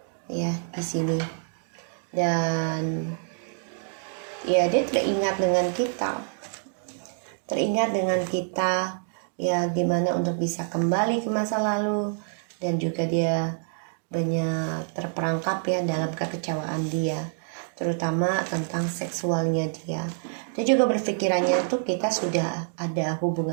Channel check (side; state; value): left; silent; digital silence